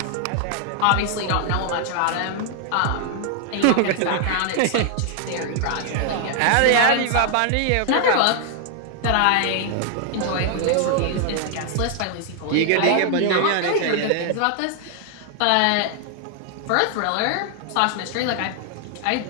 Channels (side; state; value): both; different; correlation 0.00